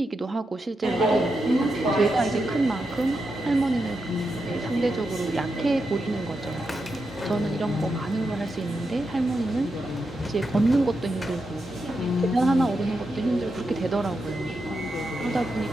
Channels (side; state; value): both; normal; correlation 0.86